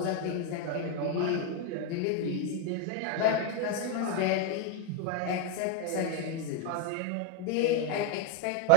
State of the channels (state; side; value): different; both; correlation 0.00